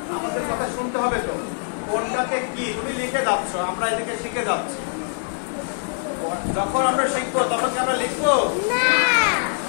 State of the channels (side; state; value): right; silent; digital silence